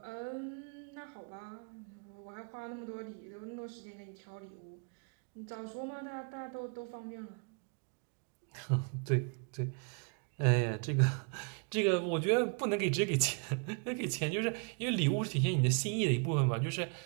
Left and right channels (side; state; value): left; quieter; 39.9 dB